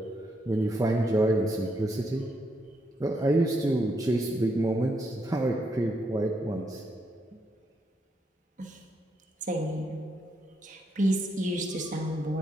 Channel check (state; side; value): normal; both; correlation 0.78